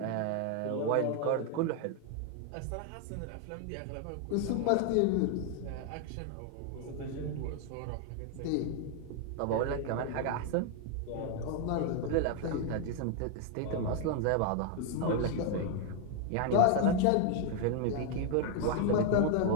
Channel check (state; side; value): different; both; correlation 0.00